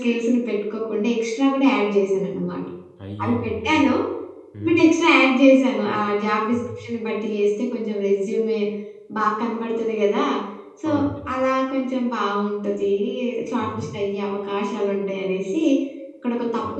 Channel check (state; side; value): identical; both; correlation 1.00